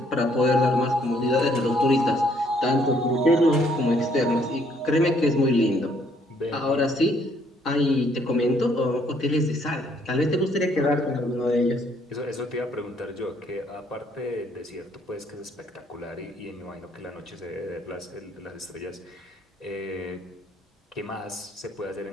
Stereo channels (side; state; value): both; normal; correlation 0.66